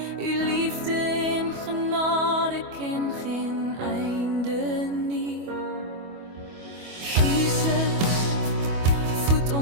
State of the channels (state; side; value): late; left; 25 ms